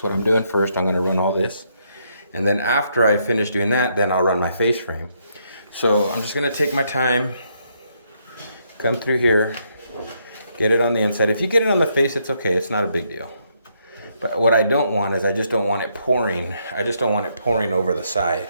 what I'm doing first. I'm going to run all this. And then after I finish doing that, then I'll run my face frame. So I'm just going to take my time, come through here, get it on the inside. If you get it on the face, it's okay. It's not a big deal. But what I don't want is I just don't want it pouring. I just don't want it pouring over the side.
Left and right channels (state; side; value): inverted; both; correlation -0.75